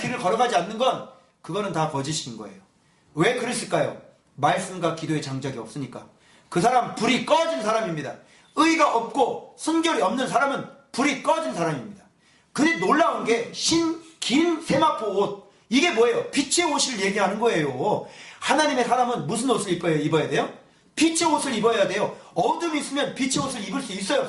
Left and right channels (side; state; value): both; identical; correlation 1.00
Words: 걸어가지 않는 건 그거는 다 거짓인 거예요. 왜 그랬을까요? 말씀과 기도의 장작이 없으니까. 그 사람 불이 꺼진 사람입니다. 의가 없고 순결이 없는 사람은 불이 꺼진 사람입니다. 근데 놀라운 게 긴 세마포 옷. 이게 뭐예요? 빛의 옷을 얘기하는 거예요. 하나님의 사람은 무슨 옷을 입어야 돼요? 빛의 옷을 입어야 돼요. 어둠이 있으면 빛의 옷을 입을 수 있어요,